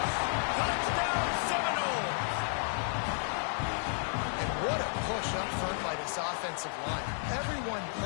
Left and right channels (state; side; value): silent; right; 56 dB below the other